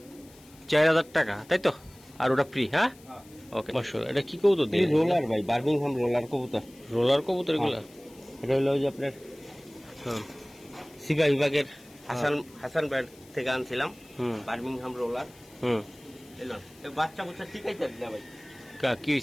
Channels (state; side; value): noise; left; hiss, 25 dB below the sound